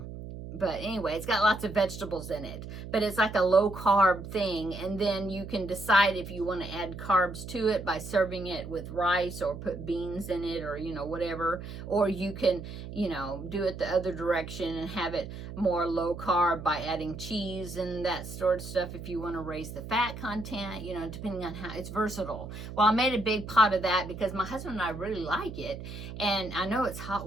But anyway, it's got lots of vegetables in it, but it's like a low carb thing. And then you can decide if you want to add carbs to it by serving it with rice, or put beans in it, or, whatever. Or you can, do it the other direction and have it more low carb by adding cheese and that sort of stuff if you want to raise the fat content, depending on how it's versatile. Well, I made a big pot of that because my husband and I really like it. And I know it's hot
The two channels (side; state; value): right; noise; hum, 10 dB below the sound